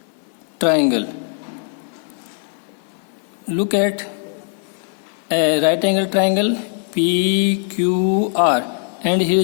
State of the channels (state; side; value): silent; right; 57 dB below the other